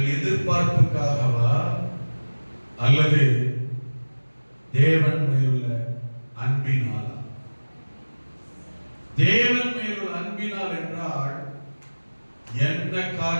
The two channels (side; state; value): both; inverted; correlation -1.00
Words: எதிர்பார்ப்புக்காகவா? அல்லது தேவன் மேலுள்ள அன்பினாலா? தேவன் மேலுள்ள அன்பினால் என்றால் என்ன